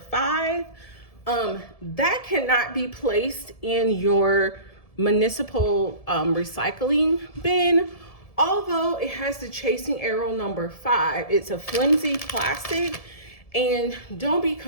5, that cannot be placed in your municipal recycling bin. Although it has the chasing arrow number 5, it's a flimsy plastic, and don't be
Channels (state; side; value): late; right; 1.7 ms